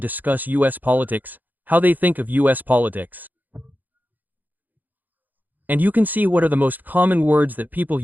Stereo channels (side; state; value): left; late; 0.084 ms